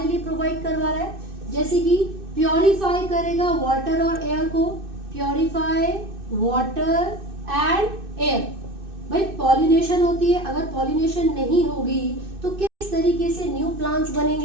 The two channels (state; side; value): late; left; 2.6 ms